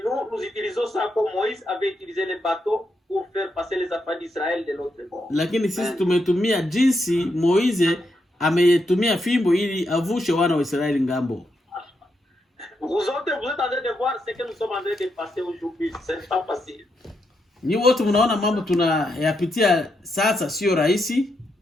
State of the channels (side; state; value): both; normal; correlation 0.82